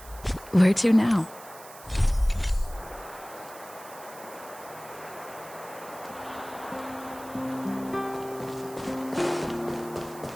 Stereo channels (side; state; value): right; noise; hiss, 18 dB below the sound